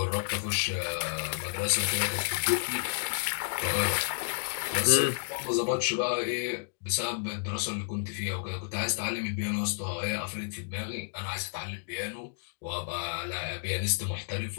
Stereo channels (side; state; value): right; silent; digital silence